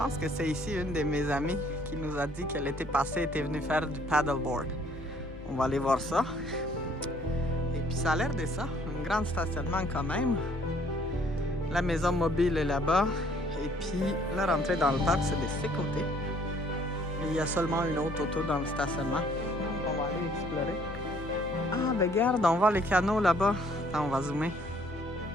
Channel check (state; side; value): normal; both; correlation 0.61